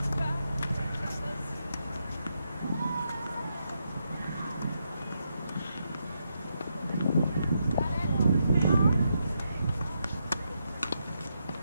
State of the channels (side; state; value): both; inverted; correlation -0.82